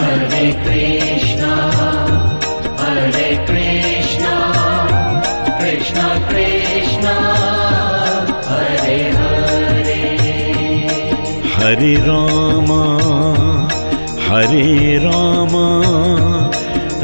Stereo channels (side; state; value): both; inverted; correlation -1.00